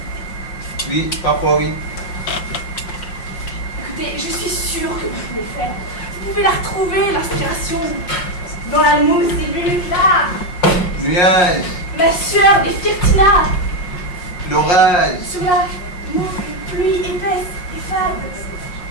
Oui, parfois oui. Écoutez, je suis sûre que vous pouvez le faire. Vous pouvez la retrouver, l'inspiration. Dans la mousse des minutes là. Nuage, Ma sueur des Firtina. l'orage. Sur la pluie épaisse et fade.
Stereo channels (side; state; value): right; late; 5.6 ms